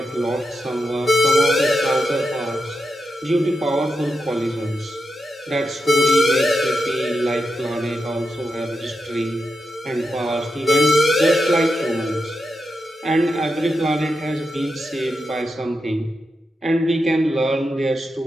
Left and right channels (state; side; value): normal; both; correlation 0.87